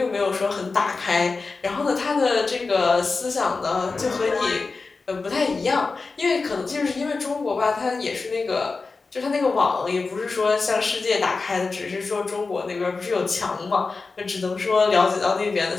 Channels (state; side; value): quieter; right; 4.1 dB